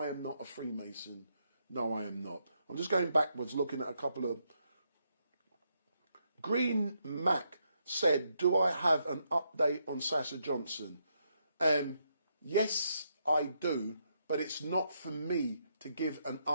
am not a Freemason. No, I am not. I'm just going backwards, looking at a couple of... Green Mac said, do I have an update on Sasha Johnson? Yes, I do, but it's not for me to give an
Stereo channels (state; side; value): inverted; both; correlation -0.78